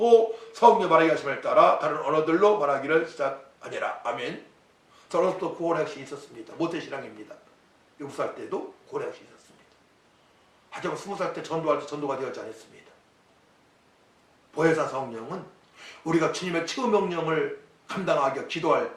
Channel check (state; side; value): identical; both; correlation 1.00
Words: 성령 말하게 하심을 따라 다른 언어들로 말하기를 시작하니라. 아멘. 저는 또 고혼학식이 있었습니다. 모태신앙입니다. 7살 때도 고혼학식이 있었습니다. 하지만 20살 때 전도할 때 전도가 되었지 않았습니다. 보혜사 성령은 우리가 주님의 최후 명령을 감당하기 기도할